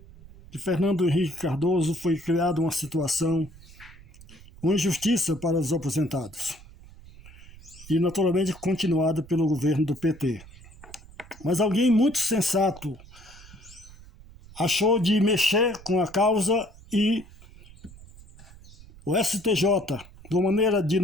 de Fernando Henrique Cardoso foi criada uma situação, uma injustiça para os aposentados e naturalmente continuada pelo governo do PT. Mas alguém muito sensato achou de mexer com a causa e o STJ, de uma maneira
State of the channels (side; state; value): right; noise; rumble, 21 dB below the sound